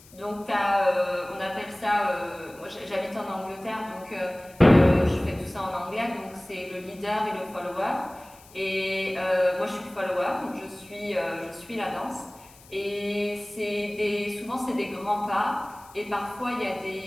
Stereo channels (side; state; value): left; noise; hiss, 24 dB below the sound